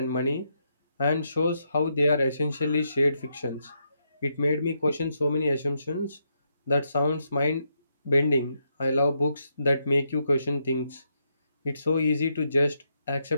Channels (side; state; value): both; inverted; correlation -0.79